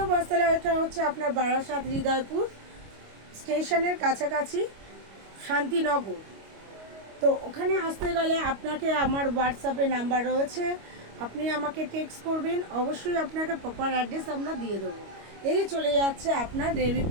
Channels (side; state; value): left; late; 25 ms